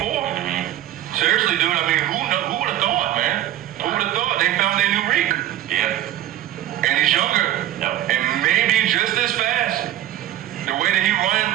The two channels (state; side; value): quieter; left; 13.1 dB